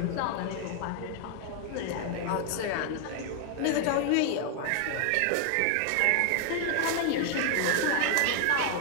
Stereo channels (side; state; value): both; different; correlation 0.00